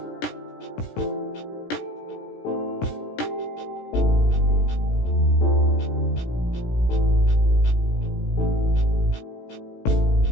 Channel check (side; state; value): right; late; 17 ms